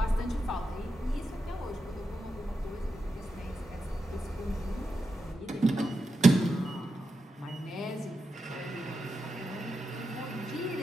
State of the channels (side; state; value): both; normal; correlation 0.88